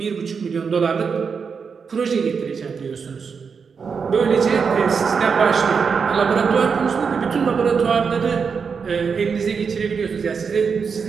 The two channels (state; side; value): quieter; left; 5.8 dB